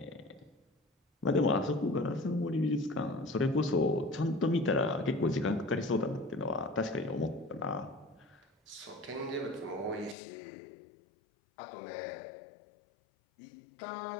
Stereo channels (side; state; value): right; drops out; at 10.2 s